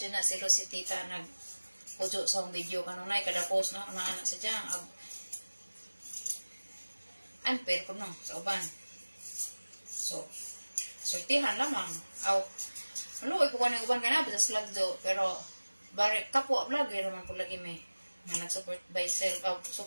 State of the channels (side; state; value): both; inverted; correlation -1.00